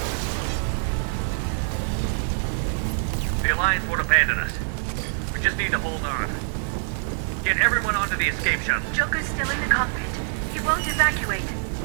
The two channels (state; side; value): silent; left; digital silence